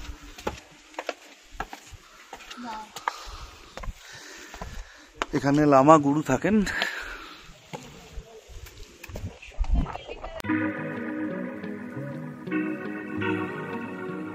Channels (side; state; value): both; identical; correlation 1.00